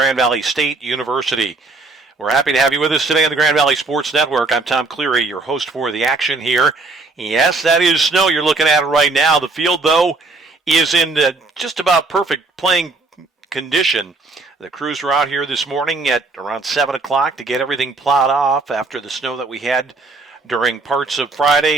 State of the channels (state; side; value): quieter; left; 3.6 dB